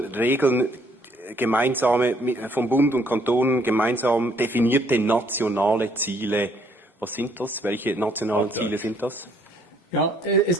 Regeln gemeinsame vom Bund und Kantonen gemeinsam definierte nationale Ziele. Was sind das? Welche nationalen Ziele sind das? Ja, es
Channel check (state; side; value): normal; both; correlation 0.66